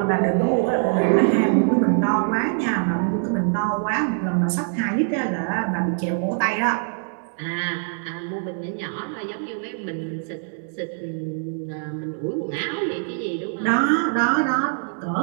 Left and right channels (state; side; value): silent; left; 63 dB below the other